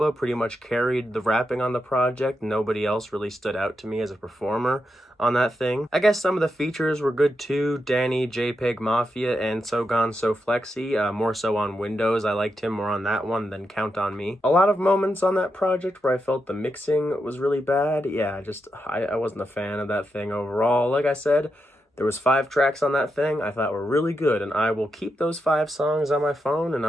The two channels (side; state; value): both; normal; correlation 0.85